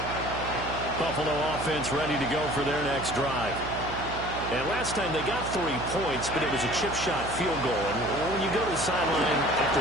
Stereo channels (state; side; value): noise; right; hum, 8 dB below the sound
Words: Buffalo offense ready to go for their next drive. And last time they got 3 points, but it was a chip shot field goal. And when you go to the sideline after